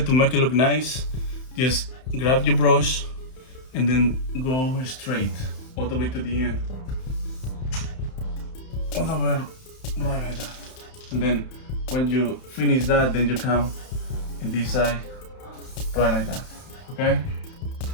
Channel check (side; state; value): right; late; 31 ms